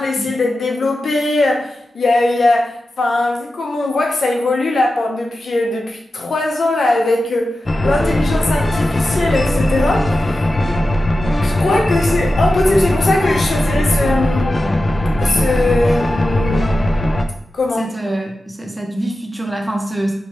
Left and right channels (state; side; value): normal; both; correlation 0.92